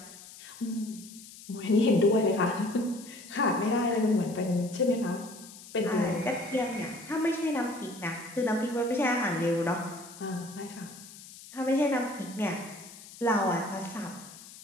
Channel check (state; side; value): noise; left; hiss, 17 dB below the sound